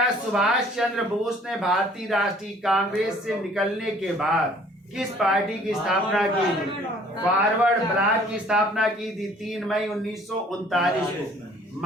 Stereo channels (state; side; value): normal; both; correlation 0.55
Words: है सुभाष चंद्र बोस ने भारतीय राष्ट्रीय कांग्रेस से निकलने के बाद किस पार्टी की स्थापना की थी? फॉरवर्ड ब्लॉक की स्थापना की थी 3 मई 1939 को